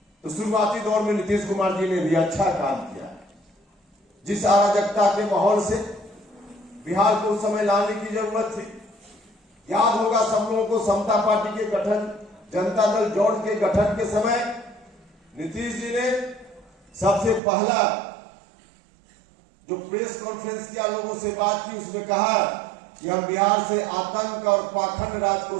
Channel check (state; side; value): drops out; left; at 17.4 s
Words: तो शुरुआती दौर में नीतीश कुमार जी ने भी अच्छा काम किया। जिस अराजकता के माहौल से बिहार को उस समय लाने की जरूरत थी, याद होगा सब लोगों को, समता पार्टी के गठन, जनता दल जॉर्ज के गठन के समय नीतीश जी ने सबसे पहला जो प्रेस कॉन्फ्रेंस किया, लोगों से बात की, उसमें कहा कि हम बिहार से आतंक और पाखंड राज को